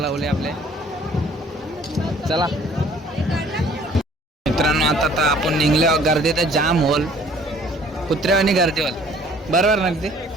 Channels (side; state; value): both; normal; correlation 0.56